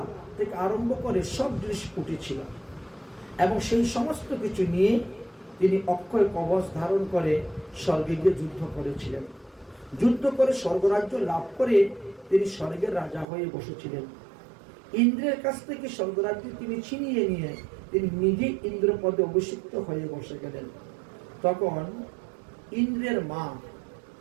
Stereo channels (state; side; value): drops out; left; at 13.2 s